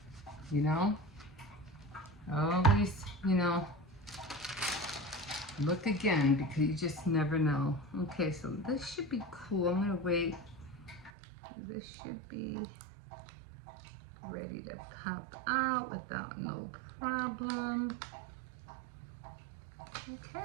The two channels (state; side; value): drops out; left; at 11.1 s